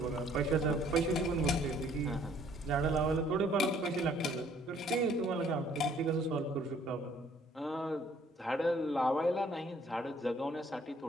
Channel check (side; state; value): both; normal; correlation 0.61